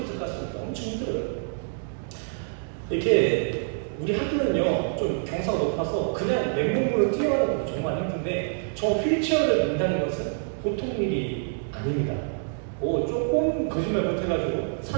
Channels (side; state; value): left; silent; digital silence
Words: 갔으니까 엄청 힘들어요. 이렇게 우리 학교는요 좀 경사가 높아서 그냥 맨몸으로 뛰어가는 것도 정말 힘든데, 저 휠체어를 민다는 것은 보통 일이 아닙니다. 조금 거짓말 못해가지고